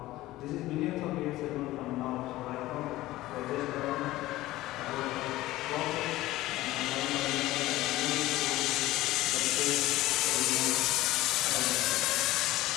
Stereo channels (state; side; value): quieter; right; 16.8 dB